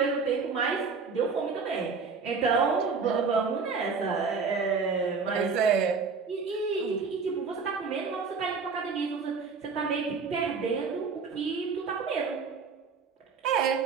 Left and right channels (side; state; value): left; quieter; 5.1 dB